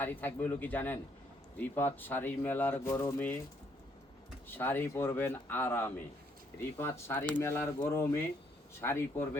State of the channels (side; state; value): both; normal; correlation 0.69